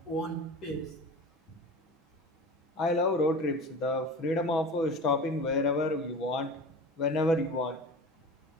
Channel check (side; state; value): both; normal; correlation 0.34